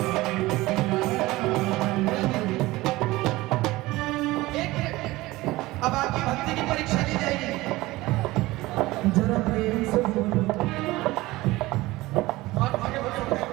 अब आपकी भक्ति की परीक्षा ली जाएगी। जरा प्रेम से बोलो और आगे बढ़ो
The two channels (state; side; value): quieter; left; 19.3 dB